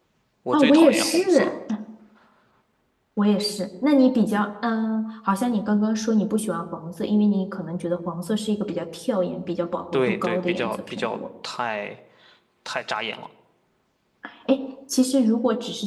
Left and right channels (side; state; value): both; identical; correlation 1.00